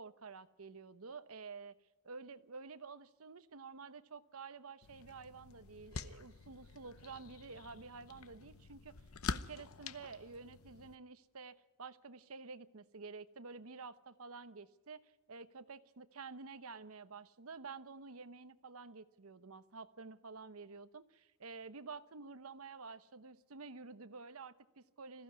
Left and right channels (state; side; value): normal; both; correlation -0.04